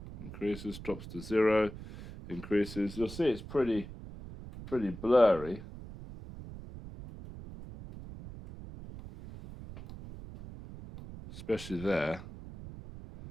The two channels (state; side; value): noise; right; rumble, 13 dB below the sound